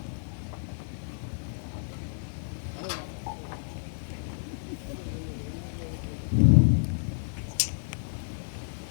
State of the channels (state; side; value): silent; right; digital silence